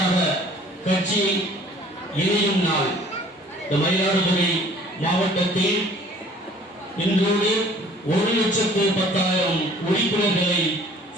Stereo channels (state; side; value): normal; both; correlation 0.53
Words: கட்சி இணையும் நாள். இந்த மயிலாடுதுறை மாவட்டத்தில் இன்றோடு 1,10,10,000 உறுப்பினர்களை